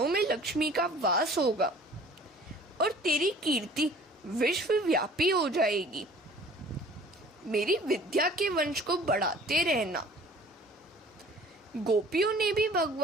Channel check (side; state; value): both; normal; correlation 0.50